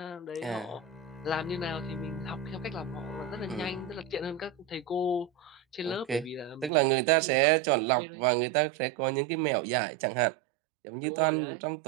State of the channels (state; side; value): drops out; left; at 6.7 s